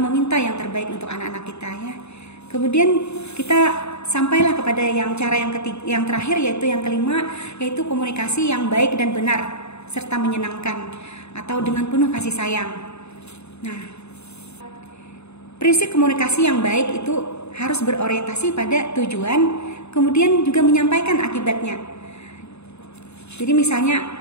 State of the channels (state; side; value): late; right; 0.81 ms